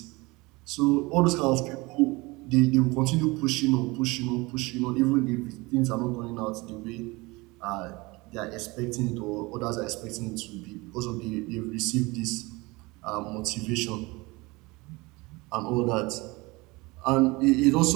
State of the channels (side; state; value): left; quieter; 23.7 dB